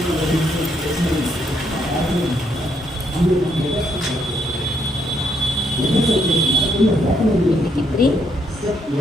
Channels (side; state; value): both; normal; correlation 0.73